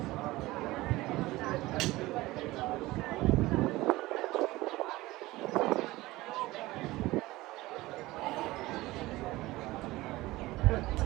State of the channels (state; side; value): quieter; left; 19.0 dB